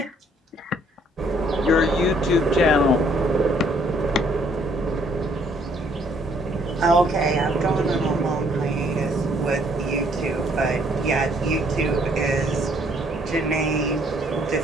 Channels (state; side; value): normal; both; correlation 0.65